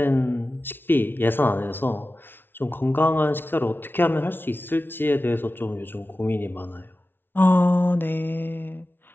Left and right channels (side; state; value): right; late; 0.10 ms